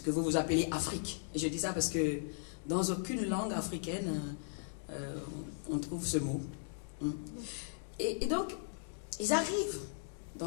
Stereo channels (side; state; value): right; silent; digital silence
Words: que vous appelez Afrique. Et je dis ça parce que dans aucune langue africaine, on trouve ce mot. Et donc, ils arrivent